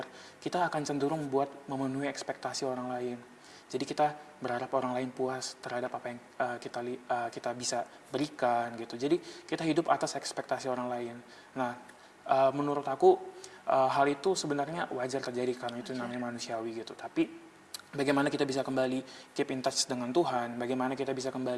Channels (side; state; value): both; identical; correlation 1.00